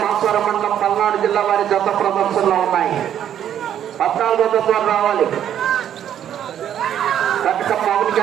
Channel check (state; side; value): quieter; left; 10.1 dB